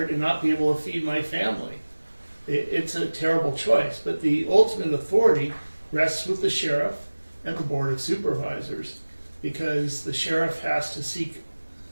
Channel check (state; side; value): inverted; both; correlation -1.00